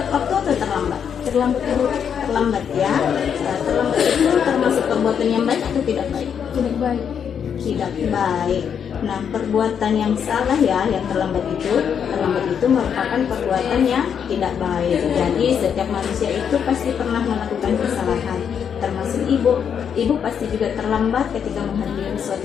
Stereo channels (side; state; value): right; quieter; 7.7 dB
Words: waktu atau terlambat? Terlambat Bu. Terlambat ya. Terlambat itu termasuk perbuatan yang baik atau tidak baik? Tidak baik. Tidak baik. Nah, perbuatan yang salah ya, yang terlambat itu merupakan perbuatan yang tidak baik. Jadi setiap manusia itu pasti pernah melakukan kesalahan, termasuk ibu. Ibu pasti juga terlambat ketika menghadiri